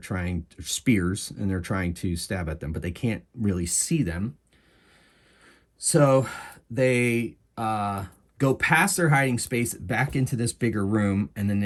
spears, and they're trying to stab at them, but they can't really see them. So they go past their hiding space back into this bigger room, and then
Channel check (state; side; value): identical; both; correlation 1.00